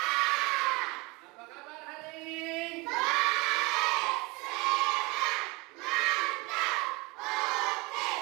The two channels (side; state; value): left; quieter; 25.5 dB